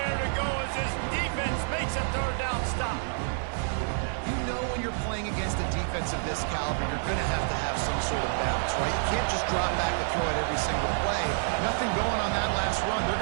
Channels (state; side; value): silent; left; digital silence